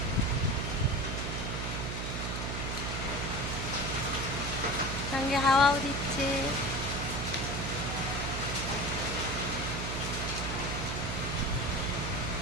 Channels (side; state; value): right; noise; hum, 3 dB below the sound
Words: সঙ্গে হাওয়াও দিচ্ছে।